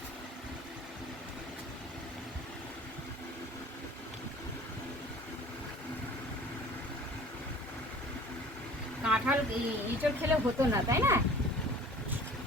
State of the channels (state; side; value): normal; both; correlation 0.47